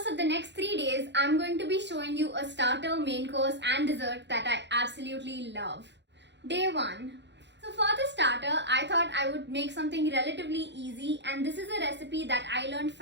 of the next 3 days, I'm going to be showing you a starter, main course and dessert that I absolutely love. Day 1. So for the starter, I thought I would make something relatively easy, and this is a recipe that I learned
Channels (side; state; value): left; late; 0.51 ms